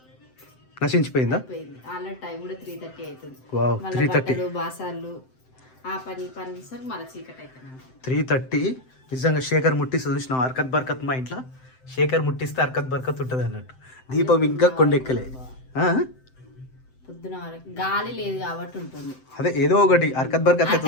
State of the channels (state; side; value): late; right; 7.8 ms